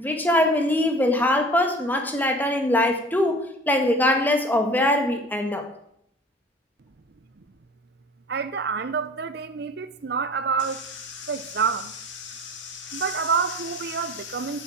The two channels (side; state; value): both; normal; correlation 0.43